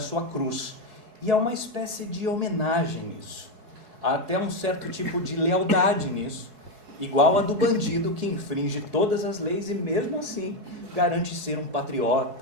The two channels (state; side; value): late; left; 4.7 ms